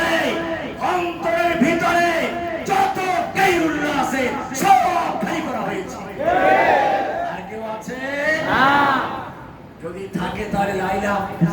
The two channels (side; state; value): both; identical; correlation 1.00